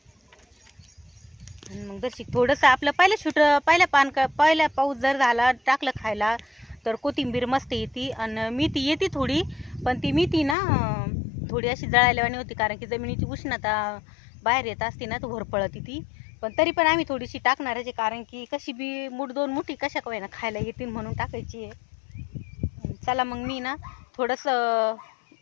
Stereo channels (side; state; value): right; drops out; at 10.6 s